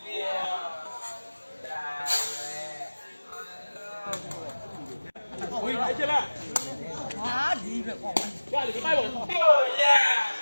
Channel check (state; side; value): inverted; both; correlation -1.00